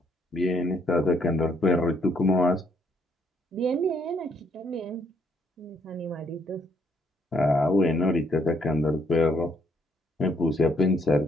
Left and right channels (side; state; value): both; normal; correlation 0.69